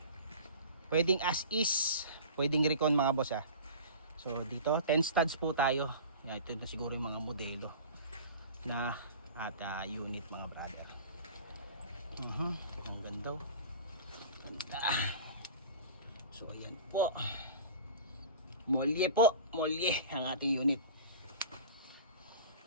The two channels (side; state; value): both; inverted; correlation -0.38